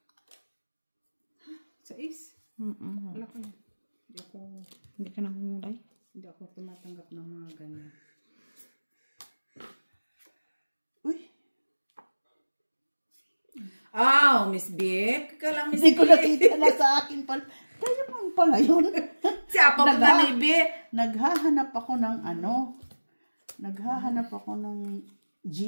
Sa is. Wala ko na. Hindi ka nangungulay. Hindi ako tumatanggap ng mga ganyan. Uy. Miss B. Kala Miss Hindi B. ko nakita na sa akin pala. Kaya mo pala yun. Siya pa mga ni B. Naghahanap ako ng Naghahanap ako ng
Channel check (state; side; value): inverted; both; correlation -1.00